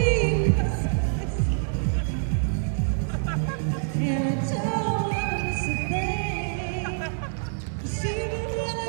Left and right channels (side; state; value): left; silent; 61 dB below the other